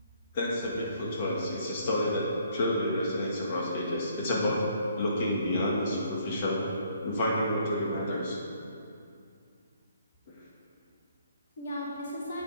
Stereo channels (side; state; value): both; inverted; correlation -0.65